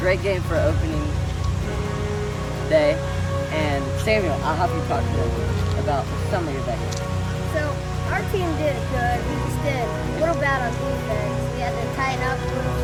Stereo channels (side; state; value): both; identical; correlation 1.00